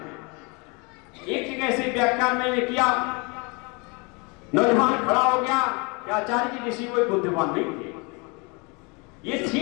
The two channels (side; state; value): right; quieter; 30.0 dB